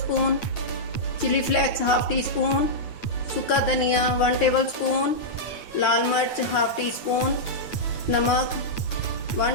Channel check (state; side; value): late; right; 9.6 ms